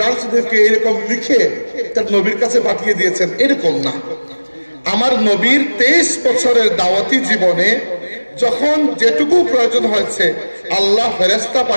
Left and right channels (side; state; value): both; inverted; correlation -1.00